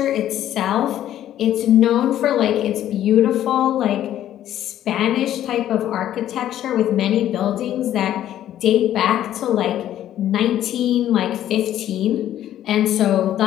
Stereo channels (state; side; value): quieter; right; 11.9 dB